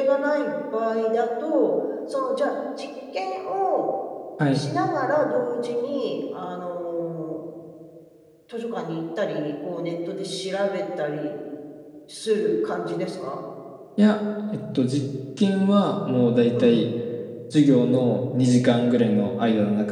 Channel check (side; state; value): both; identical; correlation 1.00